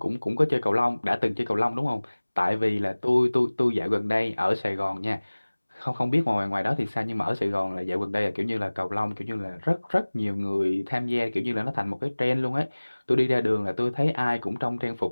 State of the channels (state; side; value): inverted; both; correlation -1.00